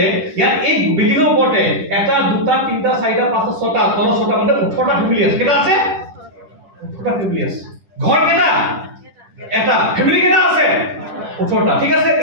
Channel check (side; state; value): left; late; 10 ms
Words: ইয়াত এই বিল্ডিঙৰ ওপৰতে 1, 2, 3, 4, 5, 6টা, 6টা মানে 18টা ফেমিলি আছে। কেইটা আছে? 18টা ফেমিলি আছে। ঘৰ কেইটা? এটা। ফেমিলি কেইটা আছে? 18টা। ঠিক আছে,